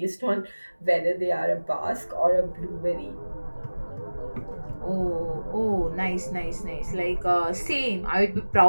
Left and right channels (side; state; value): both; inverted; correlation -1.00